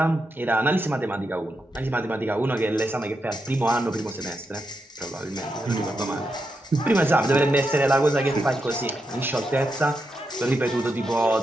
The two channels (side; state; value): both; normal; correlation 0.85